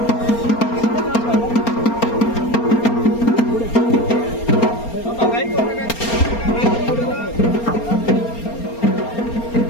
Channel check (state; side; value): late; right; 4.3 ms